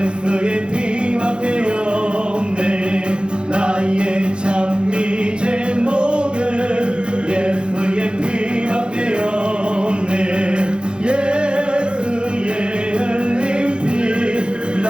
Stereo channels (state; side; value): late; left; 0.053 ms